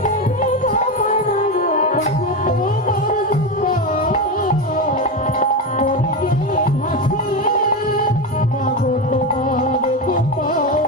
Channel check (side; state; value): both; normal; correlation 0.15